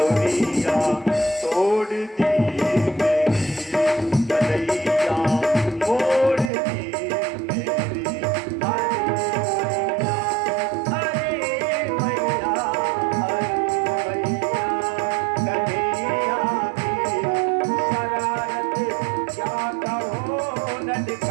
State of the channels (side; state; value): left; drops out; at 6.5 s